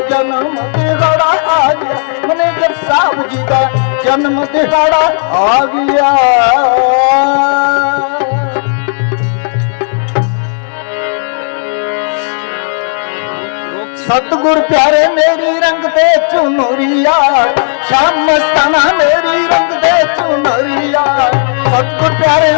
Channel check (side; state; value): right; silent; 69 dB below the other